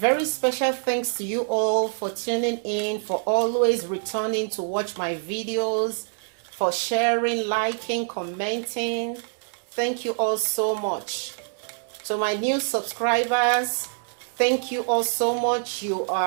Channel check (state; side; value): silent; left; digital silence